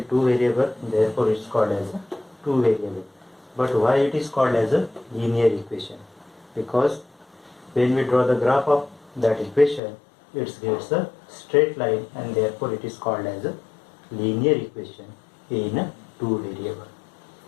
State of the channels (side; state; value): right; drops out; at 9.8 s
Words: two variable, therefore it's called as a two variable. But why it is called as a linear equation? Because when we draw the graph of that equation, it gets a straight line and therefore it is called as a linear equation in a two variable.